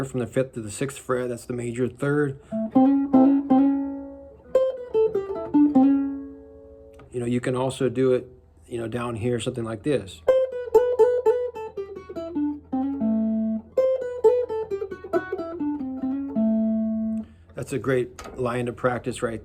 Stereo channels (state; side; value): identical; both; correlation 1.00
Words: from the 5th to the 6th fret. That's the major third. You know, you can also do it, you know, down here, something like this. That's a great line to practice right